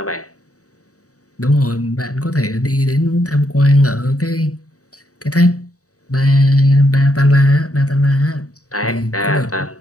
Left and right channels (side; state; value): right; late; 0.66 ms